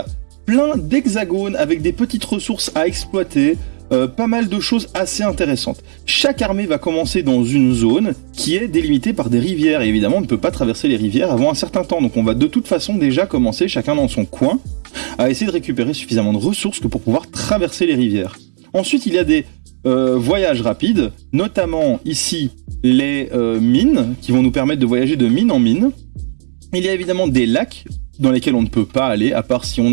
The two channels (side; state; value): left; silent; digital silence